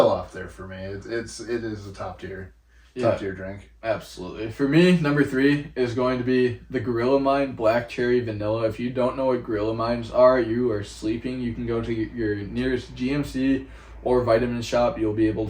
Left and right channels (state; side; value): identical; both; correlation 1.00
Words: up there for me. It is a top tier drink. Absolutely. For me, number 3 is going to be the Gorilla Mind Black Cherry Vanilla. If you don't know what Gorilla Minds are, you are sleeping. You can go to your nearest GMC or vitamin shop. You'll be able